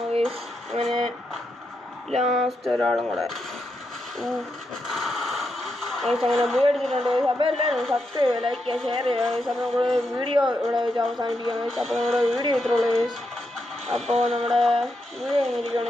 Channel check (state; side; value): normal; both; correlation 0.83